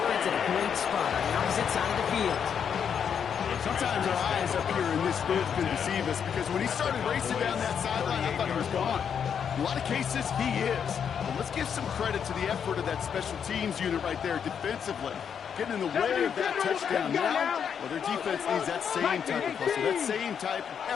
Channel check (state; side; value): quieter; right; 7.6 dB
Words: at a great spot on the opposite side of the field. Sometimes our eyes up here in this booth can deceive us because when he started racing down that sideline, I thought he was gone. In a lot of cases, he is. But let's give some credit to the effort of that special teams unit right there defensively. Getting in the way of that touchdown now, well, their defense needs that same type of hustle, that same type of